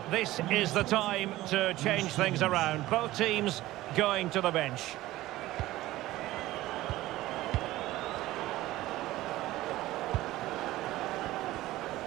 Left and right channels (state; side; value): quieter; left; 16.6 dB